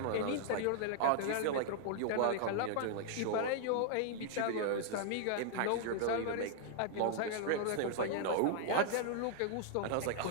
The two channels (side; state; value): both; different; correlation -0.01